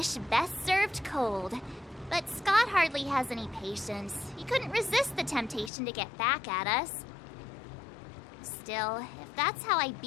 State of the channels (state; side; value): drops out; right; at 5.7 s